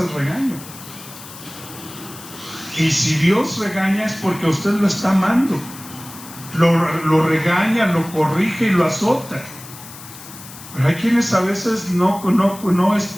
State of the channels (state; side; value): noise; left; hiss, 16 dB below the sound